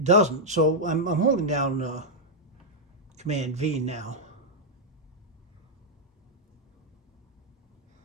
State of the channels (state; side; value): normal; both; correlation -0.04